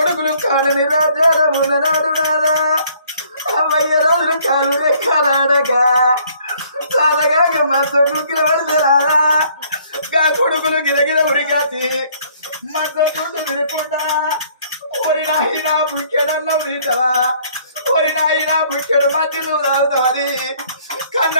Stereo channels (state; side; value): inverted; both; correlation -0.61